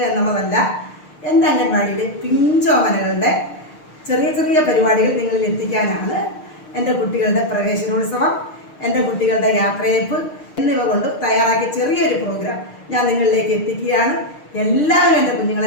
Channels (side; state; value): right; late; 6.6 ms